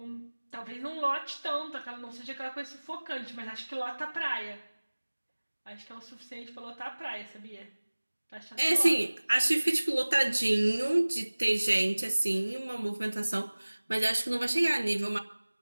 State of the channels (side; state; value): both; inverted; correlation -1.00